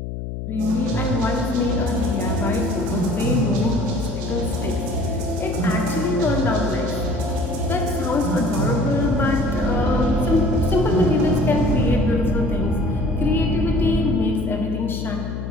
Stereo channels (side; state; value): left; noise; hum, 6 dB below the sound